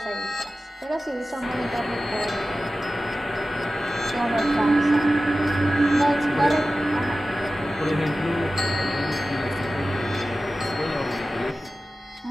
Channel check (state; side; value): normal; both; correlation 0.95